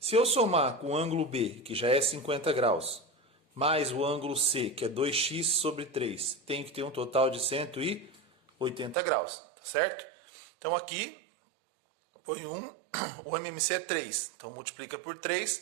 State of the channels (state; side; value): drops out; left; at 9.0 s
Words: eu somar com o ângulo B, que já é 50 graus, mais o ângulo C, que é 2x sobre 3, tem que ter um total de 180 graus, tá certo? Então aqui, põe o MMC é 3, então multiplica por 3,